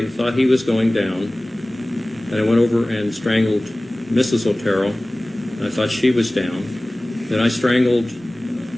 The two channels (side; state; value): both; normal; correlation 0.98